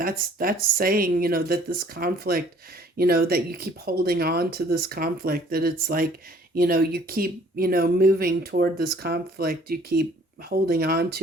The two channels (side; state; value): both; normal; correlation 0.56